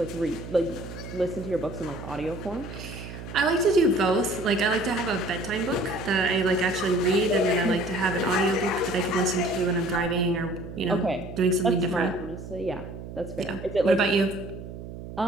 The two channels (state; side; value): noise; right; hum, 11 dB below the sound